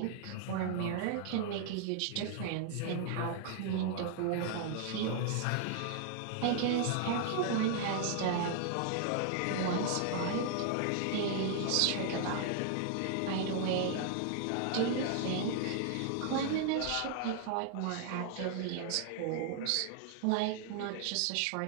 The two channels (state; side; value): different; both; correlation 0.00